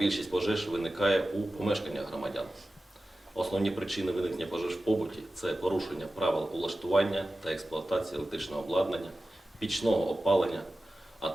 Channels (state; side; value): normal; both; correlation 0.95